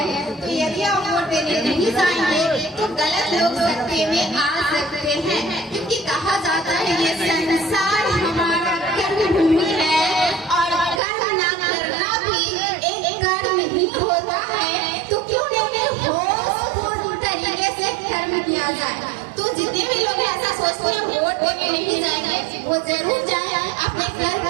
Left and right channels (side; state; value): left; drops out; at 11.0 s